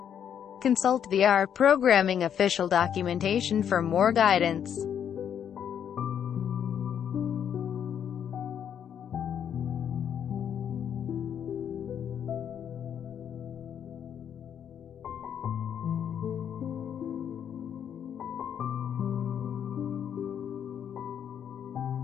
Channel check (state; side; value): quieter; right; 8.8 dB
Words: Consult the R programming official documentation for more guidance.